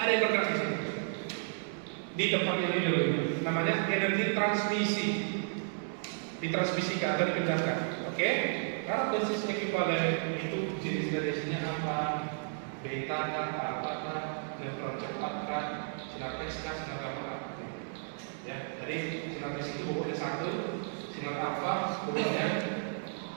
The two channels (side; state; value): left; silent; 56 dB below the other